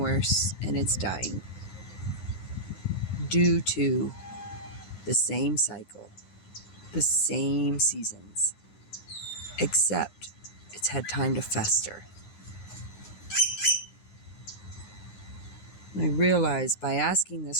and it's dying due to the same cycle, the same seasons, except it's had time to fester. And I realized by asking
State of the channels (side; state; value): right; late; 9.5 ms